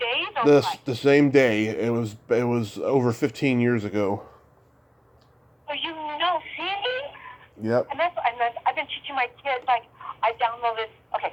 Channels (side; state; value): both; identical; correlation 1.00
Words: or what? The same day. It was over 15 years ago. So see? Yep. And I've been teaching my kids, like, I downloaded, okay,